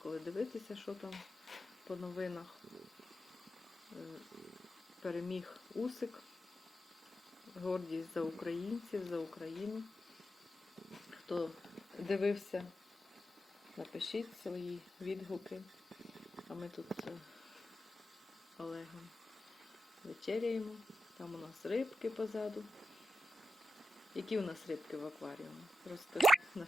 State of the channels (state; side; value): normal; both; correlation 0.89